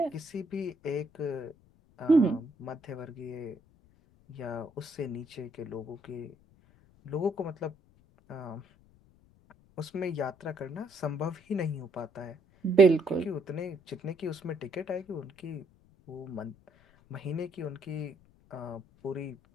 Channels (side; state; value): left; noise; rumble, 29 dB below the sound